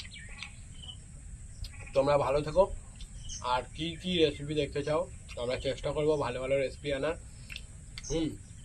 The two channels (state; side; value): identical; both; correlation 1.00